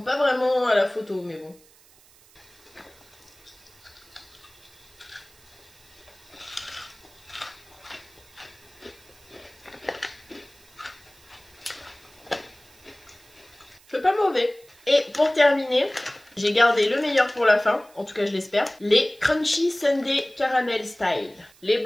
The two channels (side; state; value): right; noise; hiss, 27 dB below the sound